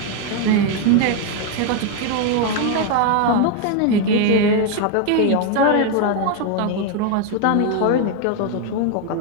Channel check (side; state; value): both; different; correlation 0.01